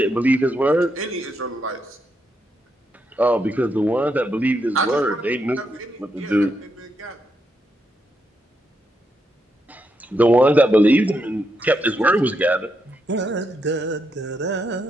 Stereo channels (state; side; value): normal; both; correlation 0.81